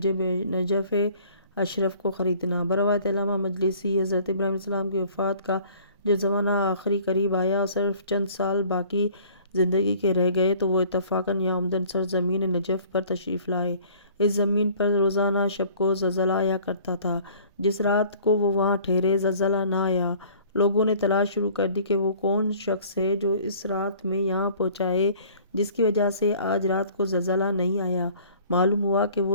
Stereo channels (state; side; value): inverted; both; correlation -0.52